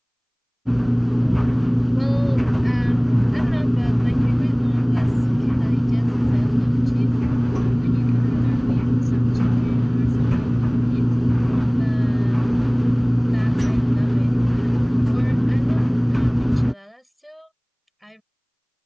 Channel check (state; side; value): identical; both; correlation 1.00